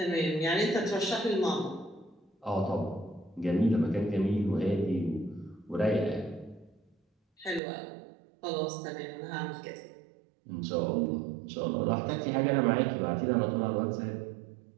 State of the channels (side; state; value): left; drops out; at 7.6 s